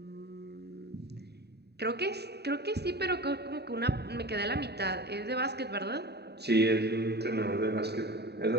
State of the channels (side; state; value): left; late; 0.48 ms